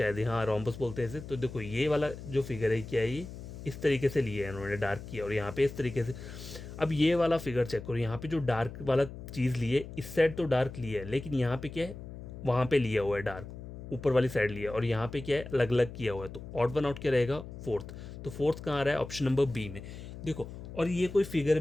हाँ रोम्बस बोलते हैं इसे। तो देखो ये वाला जो फिगर है क्या है, ये इस तरीके से लिया है इन्होंने, डार्क किया, और यहाँ पे इस तरीके से। अब ये वाला फिगर चेक करो, यहाँ पे जो डार्क वाला चीज़ लिए, इस साइड तो डार्क लिया है, लेकिन यहाँ पे क्या है, वहाँ पे लिया हुआ है डार्क, ऊपर वाली साइड लिया, और यहाँ पे क्या है, अलग अलग किया हुआ है। तो ऑड वन आउट क्या रहेगा, फोर्थ। तो फोर्थ कहाँ आ रहा है, ऑप्शन नंबर बी में, देखो। और ये कोई फिगर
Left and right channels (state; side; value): noise; left; hum, 12 dB below the sound